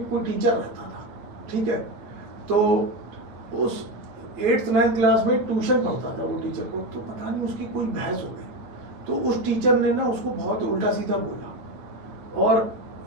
कोई टीचर रहता था, ठीक है। तो उस 8th-9th क्लास में ट्यूशन पढ़ता था वो टीचर को। तो पता नहीं उसकी कोई बहस हो गई, तो उस टीचर ने ना उसको बहुत उल्टा सीधा बोला और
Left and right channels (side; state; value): left; late; 8.9 ms